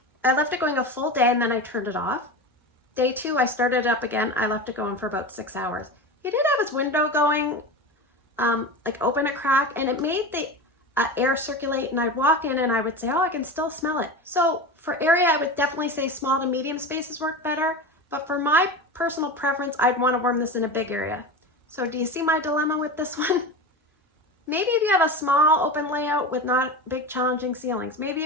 I left it going a full day and then I turned it off. Day 2, I started it up again. I left it going for about 6 hours. He did have his window going, like open a crack, and it made the air circulate, and I'd walk in and I would say, oh, I can still smell it. So for area, I would definitely say small to medium spaces work better. But for my personal preference, I'd want to warm this in a big area. So do you see my dilemma with this one? Maybe if you have a small open layout with not big challenging ceilings, maybe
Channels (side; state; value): both; normal; correlation 0.27